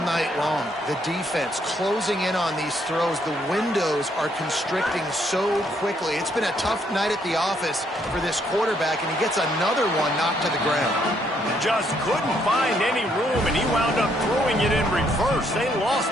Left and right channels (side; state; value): both; normal; correlation 0.71